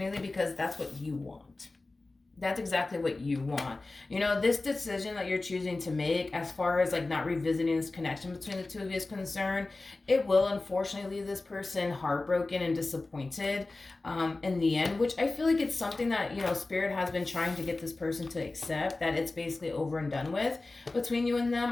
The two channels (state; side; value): quieter; right; 3.3 dB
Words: because that's what you want. That's exactly what you want. You know, this decision that you're choosing to make as far as like not revisiting this connection between the two of you is concerned, it will unfortunately leave this person heartbroken and disappointed in the end, which I feel like it's something that, you know, Spirit has been trying to get this person to accept, that it's basically over and done with between you and them.